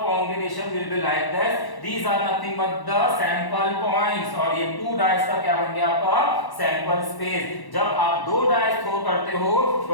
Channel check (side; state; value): right; late; 1.1 ms